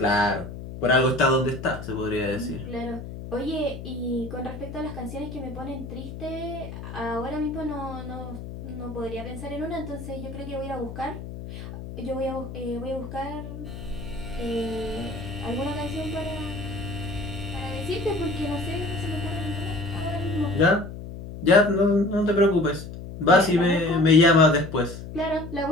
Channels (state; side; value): noise; left; hum, 10 dB below the sound